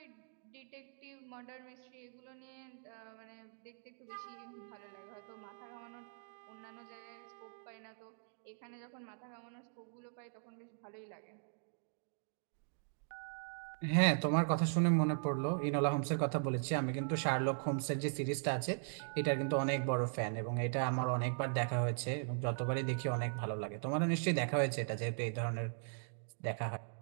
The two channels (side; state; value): left; silent; digital silence